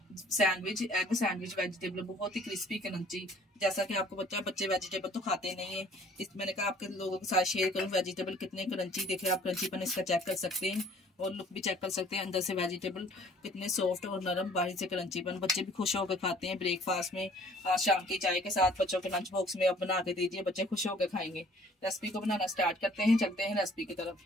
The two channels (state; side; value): normal; both; correlation 0.55